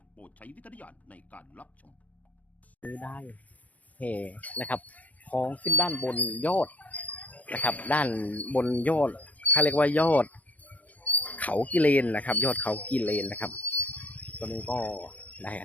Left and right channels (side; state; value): right; late; 0.073 ms